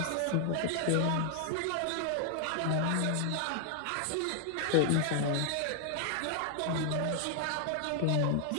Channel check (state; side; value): different; both; correlation 0.00